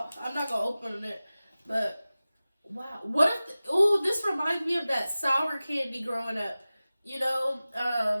I'm not gonna open it, but wow. What if? Oh, this reminds me of that sour candy growing up. You know,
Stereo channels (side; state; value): both; inverted; correlation -0.97